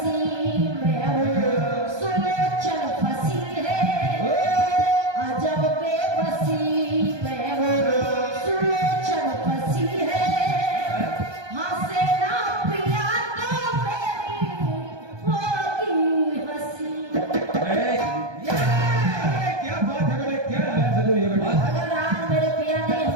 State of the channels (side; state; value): left; late; 1.2 ms